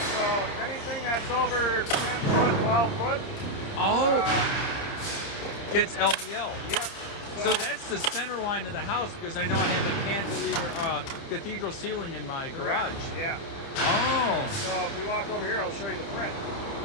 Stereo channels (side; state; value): right; late; 29 ms